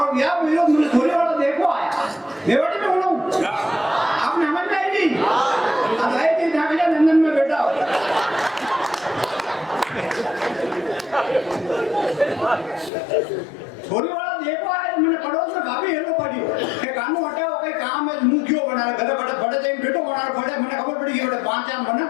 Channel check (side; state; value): right; drops out; at 12.9 s